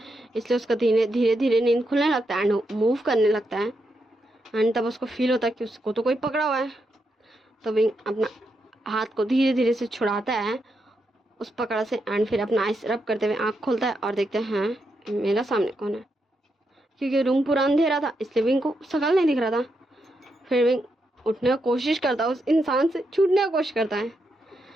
इसलिए उसका धीरे धीरे नींद खुलने लगता है एंड मूव करने लगता है। एंड तब उसको फील होता है कि उसको तो कोई पकड़ा हुआ है। तो विंग अपना हाथ को धीरे धीरे से छुड़ाता है उस पकड़ से एंड फिर अपना आइस रब करते हुए आँख खोलता है और देखते हैं मेरा सामने कौन है। क्योंकि रूम पूरा अंधेरा था इसलिए विंग को शकल नहीं दिख रहा था। फिर विंग उठने की कोशिश करता है, उस इंसान से छूटने की कोशिश करता है,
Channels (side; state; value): both; normal; correlation 0.83